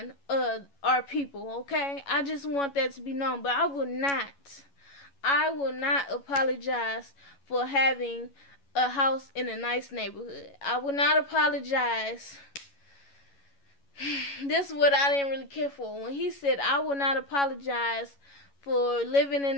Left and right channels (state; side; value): late; right; 11 ms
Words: our people, okay? I just want that to be known. But I will not apologize for having a house in a nice neighborhood. I will not apologize. This is what I didn't really care for. When he said, I will not apologize for living in